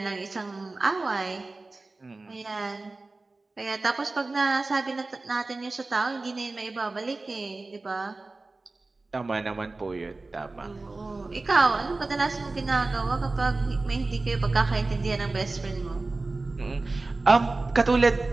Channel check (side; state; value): left; quieter; 3.4 dB